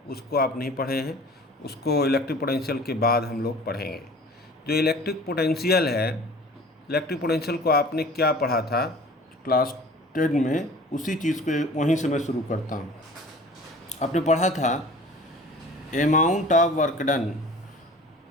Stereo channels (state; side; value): normal; both; correlation 0.44